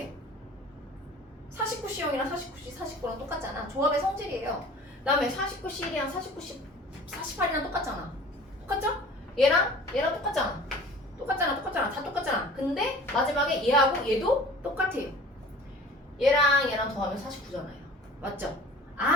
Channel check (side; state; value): both; normal; correlation 0.44